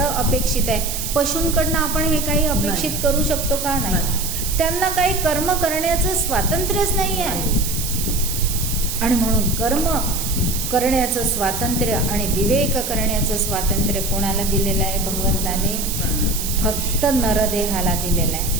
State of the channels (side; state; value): right; noise; hiss, 4 dB below the sound